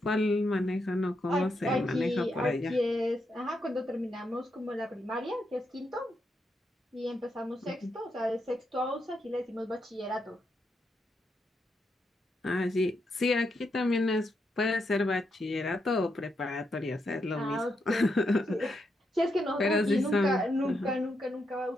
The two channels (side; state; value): both; normal; correlation 0.81